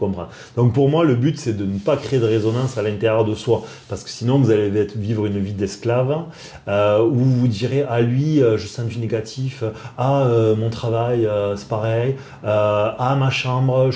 Donc pour moi, le but, c'est de ne pas créer de résonance à l'intérieur de soi. Parce que sinon, vous allez vivre une vie d'esclave où vous vous direz, ah lui, je sens du négatif. Ah, mon travail, c'est pareil. Ah, ma chambre,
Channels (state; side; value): identical; both; correlation 1.00